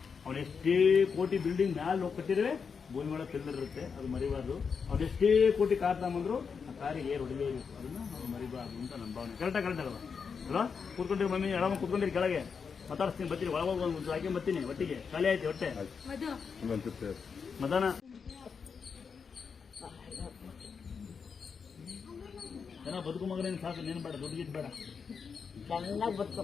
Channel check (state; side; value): quieter; right; 5.9 dB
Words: ಅವನು ಎಷ್ಟೇ ಕೋಟಿ ಬಿಲ್ಡಿಂಗ್ ಮ್ಯಾಲೆ ಹೋಗಿ ಕಟ್ಟಿದ್ರೆ ಭೂಮಿ ಒಳಗೆ ತಿಳ್ದಿರುತ್ತೆ. ಅದು ಮರಿಬಾರ್ದು. ಅವ್ರು ಎಷ್ಟೇ ಕೋಟಿ ಕಾರ್ ತಗೊಂಬಂದ್ರು ಆ ಕಾರಿಗೆ ಏರ್ ಹೊಡಿಲೇಬೇಕು. ಅದನ್ನ ನಾವು ಮರಿಬಾರ್ದು ಅಂತ ನನ್ನ ಭಾವನೆ. ಕರೆಕ್ಟಾಗಿ ಅಲ್ವಾ? ಅಲ್ವಾ? ಕೂತ್ಕೊಂಡಿರಿ ಮಮ್ಮಿ, ಎಡಮ ಕೂತ್ಕೊಂಡಿರಿ ಕೆಳಗೆ. ಮಾತಾಡ್ತೀನಿ, ಬರ್ತೀನಿ. ಒಳಗೋಗಿ ಒಂದು ಹಾಕಿ ಬರ್ತೀನಿ. ಒಟ್ಟಿಗೆ ಖಾಲಿ ಆಯ್ತು ಹೊಟ್ಟೆ. ಮದಾನ ಜನ ಬದುಕು ಮಗನೇನು ಸಾಕು. ನೀನು ಬೇಡ, ದುಡ್ಡು ಗಿಡ್ ಬೇಡ. ಚೆನ್ನಾಗಿ